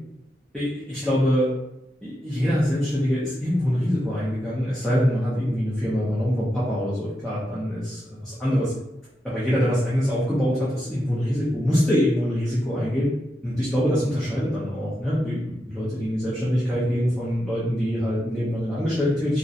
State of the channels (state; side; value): normal; both; correlation 0.85